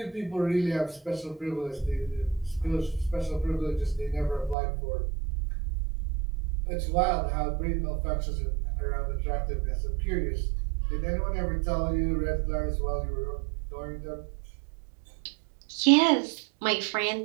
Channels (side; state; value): left; drops out; at 4.5 s